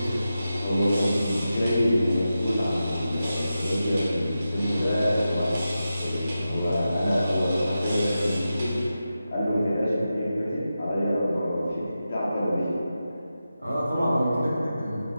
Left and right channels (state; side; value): inverted; both; correlation -0.91